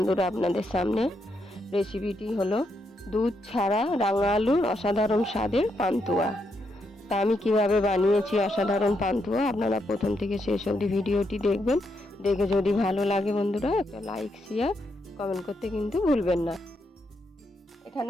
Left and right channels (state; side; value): normal; both; correlation 0.80